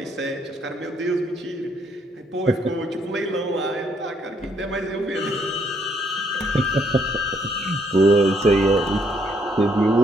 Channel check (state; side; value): normal; both; correlation 0.70